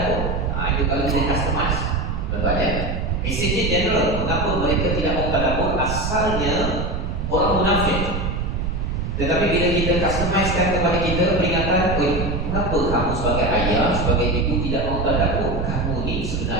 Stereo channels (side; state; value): right; noise; rumble, 2 dB below the sound